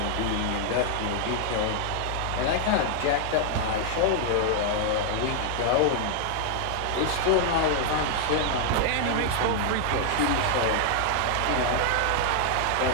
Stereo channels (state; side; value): different; both; correlation 0.00